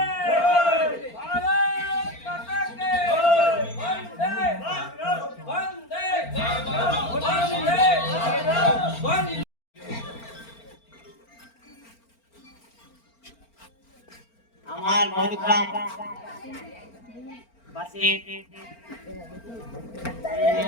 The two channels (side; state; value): right; late; 4.4 ms